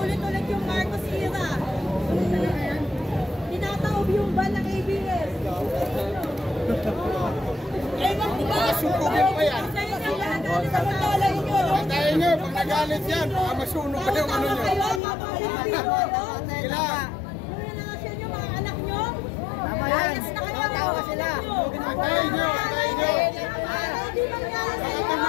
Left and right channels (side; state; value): right; drops out; at 15.0 s